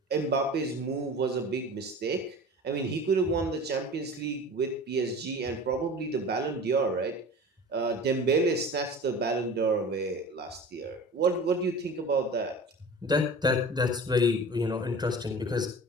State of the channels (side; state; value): both; normal; correlation 0.38